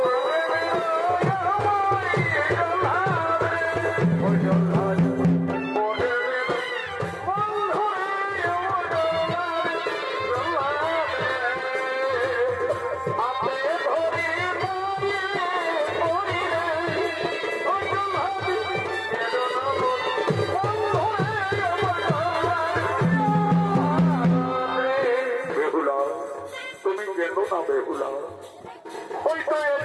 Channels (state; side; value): identical; both; correlation 1.00